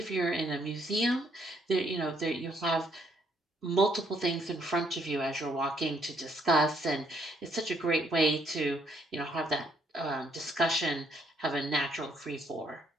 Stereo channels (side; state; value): both; normal; correlation 0.69